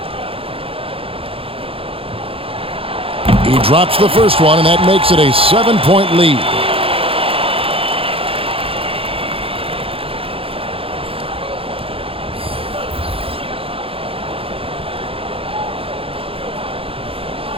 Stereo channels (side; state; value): left; late; 0.27 ms